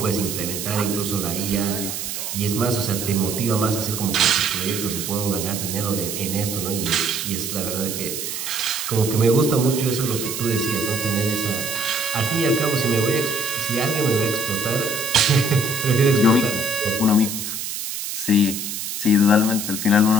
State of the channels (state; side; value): noise; right; hiss, 5 dB below the sound